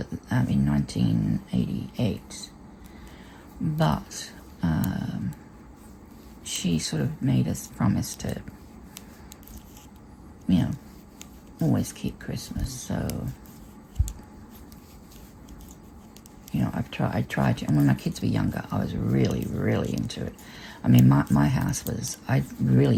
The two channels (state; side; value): identical; both; correlation 1.00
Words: in 1988. But she sort of made us promise to, always keep Christmas. So, I tried to, and when my kids were younger, I was really, really into it. I mean, my house was, I